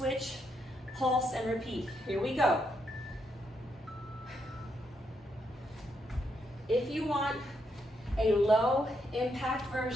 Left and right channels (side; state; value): both; normal; correlation 0.79